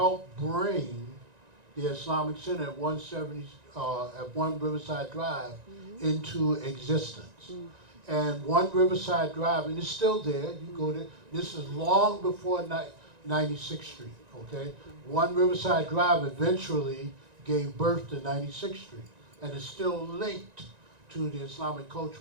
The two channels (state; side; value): late; left; 1.9 ms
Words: bring the Islamic Center at 170 at 1 Riverside Drive into existence. And 1 Riverside Drive, and it's still there, you go there, this is long before 96th Street, okay? 1 Riverside Drive eventually gave birth to 96th Street, and it's still linked to the Islamic